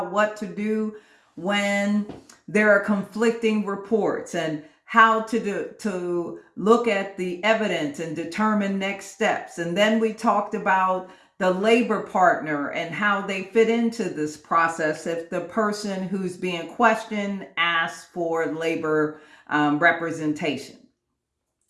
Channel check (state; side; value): identical; both; correlation 1.00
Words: what to do when there are conflicting reports and how to look at the evidence and determine next steps. And then we talked about the labor partner and how they fit into this process if the person who's being questioned asks for labor representation.